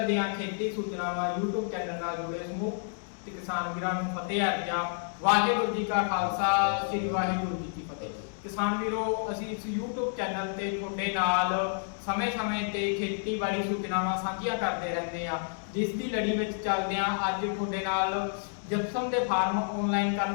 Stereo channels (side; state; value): right; silent; digital silence